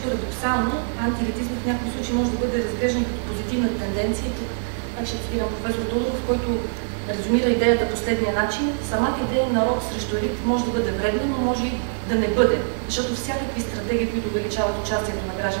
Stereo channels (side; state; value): left; silent; 57 dB below the other